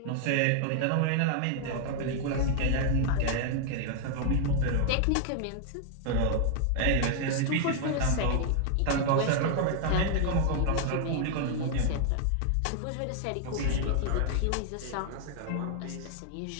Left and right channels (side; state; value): both; different; correlation 0.00